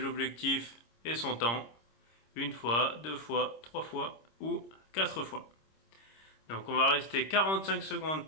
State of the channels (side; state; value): right; late; 26 ms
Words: objectifs et son temps. Une fois, deux fois, trois fois ou quatre fois. Donc on va rester 45 secondes